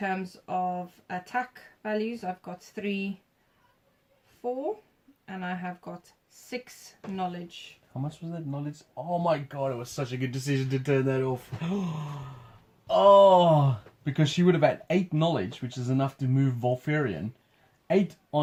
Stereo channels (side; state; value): both; identical; correlation 1.00